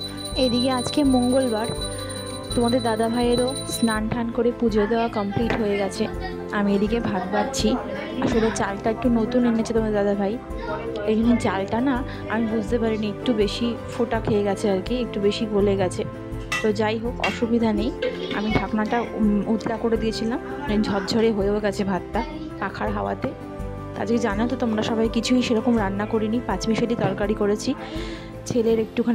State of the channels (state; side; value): identical; both; correlation 1.00